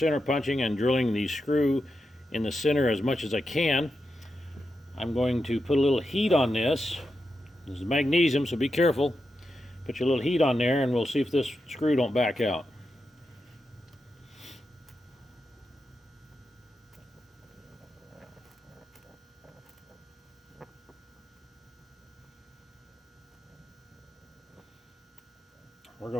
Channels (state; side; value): normal; both; correlation 0.87